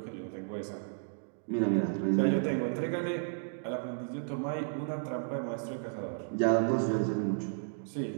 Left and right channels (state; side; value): silent; left; digital silence